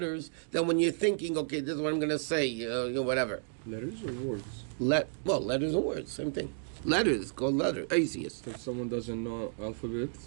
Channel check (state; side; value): silent; left; digital silence